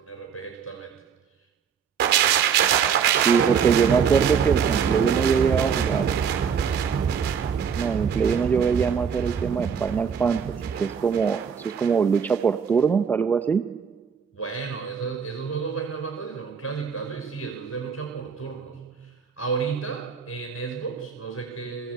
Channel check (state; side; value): quieter; left; 6.8 dB